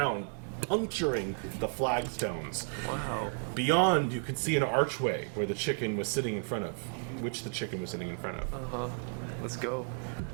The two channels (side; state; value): left; silent; 56 dB below the other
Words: puncturing the flagstones. Wow. Beyond, you can see an archway where the chicken was sitting in front of, which the chicken was sitting in front of. Let's go.